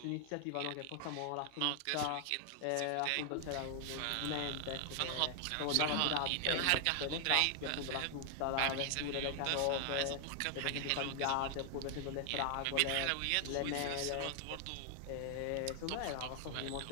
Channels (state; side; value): different; both; correlation 0.00